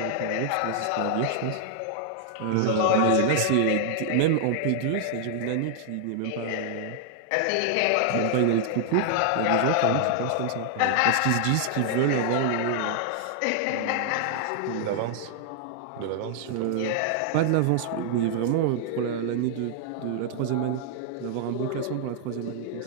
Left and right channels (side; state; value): both; different; correlation -0.01